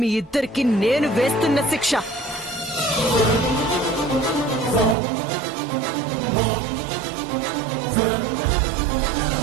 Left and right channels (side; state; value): left; drops out; at 5.0 s